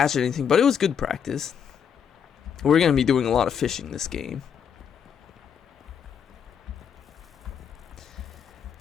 anything, but it was good practice. We're gonna be doing a lot of fishing this game.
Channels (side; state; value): right; quieter; 7.7 dB